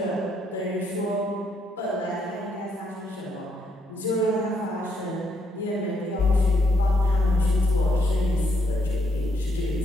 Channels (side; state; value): both; normal; correlation 0.74